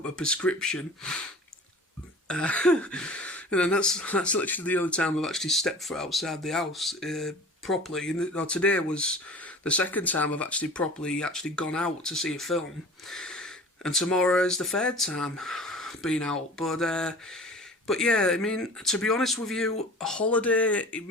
a prescription. And then that's literally the only time I've actually stepped foot outside the house properly. And today was the second time I've actually properly gone out to see a film. And tomorrow is the 3rd time being out. But yeah, I mean, to be honest with you, a holiday, it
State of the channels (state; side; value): normal; both; correlation 0.41